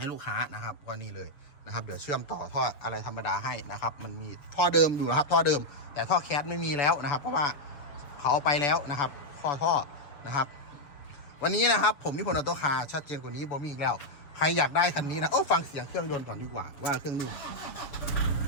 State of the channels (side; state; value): right; late; 7.2 ms